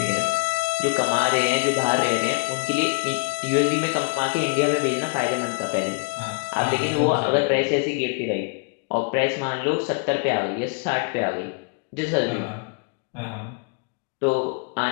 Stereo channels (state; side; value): quieter; right; 33.7 dB